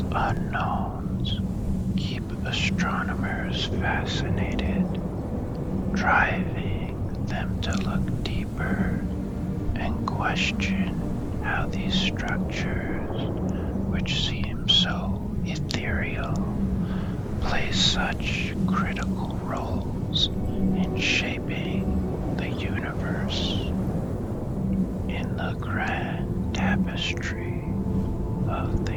unknowns keep astronomers fascinated, driving them to look deeper and question how these structures, which seem so ethereal, play such critical roles in shaping the universe. In the grand tapestry of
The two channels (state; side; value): identical; both; correlation 1.00